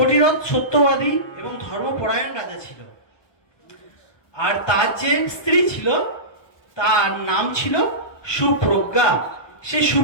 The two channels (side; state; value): right; late; 1.0 ms